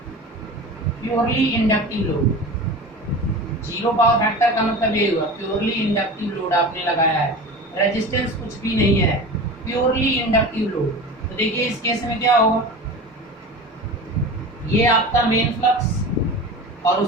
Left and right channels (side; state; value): both; normal; correlation 0.33